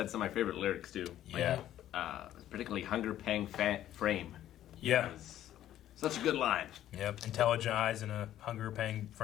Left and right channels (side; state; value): right; quieter; 12.3 dB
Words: some of my favorite lyrics too. Yeah, particularly "Hunger Pang Frame." Yeah. Such a good line. Yep, intelligent eyes in a hunger-paying